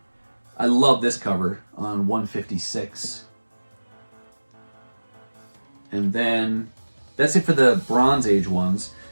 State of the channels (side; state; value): both; inverted; correlation -1.00